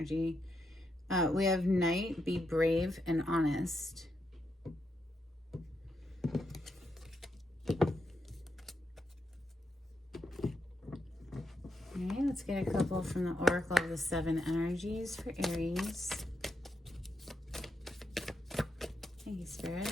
We have Knight, be brave and honest. All right, let's get a couple from the Oracle of the Seven Energies for Aries. Thank you,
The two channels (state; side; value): normal; both; correlation 0.83